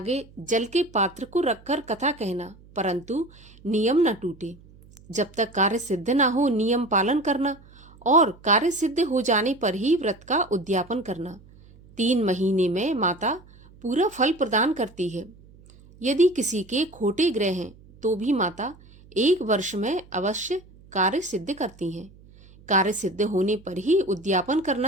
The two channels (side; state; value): right; noise; hum, 24 dB below the sound